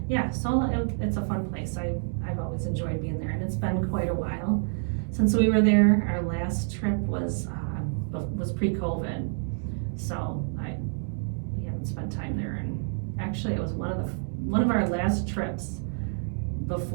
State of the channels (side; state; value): left; silent; digital silence